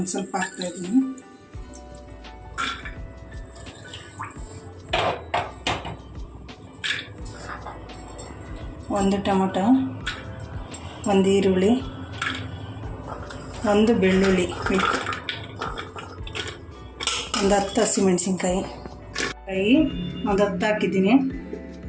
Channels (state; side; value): identical; both; correlation 1.00